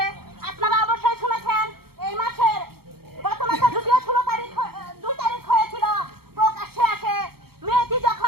আপনারা অবশ্যই শুনেছেন এই মাসের গত মাসে যদিও 2 তারিখ হয়েছিল, প্রকাশ্যে আসে মেয়েটি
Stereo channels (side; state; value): left; late; 0.95 ms